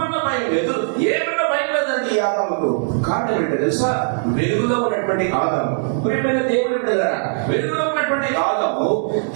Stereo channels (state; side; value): silent; left; 66 dB below the other